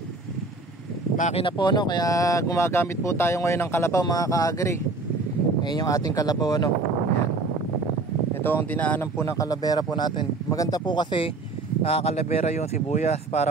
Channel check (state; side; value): quieter; left; 3.4 dB